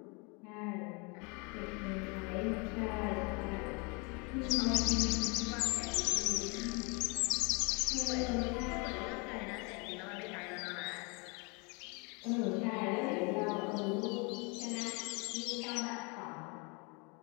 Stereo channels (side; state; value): right; quieter; 31.1 dB